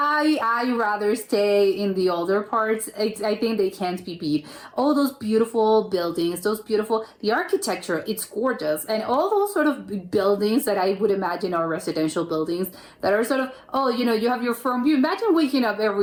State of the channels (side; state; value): both; identical; correlation 1.00